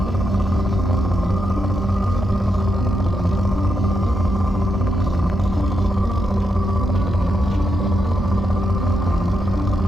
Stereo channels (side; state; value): both; normal; correlation 0.83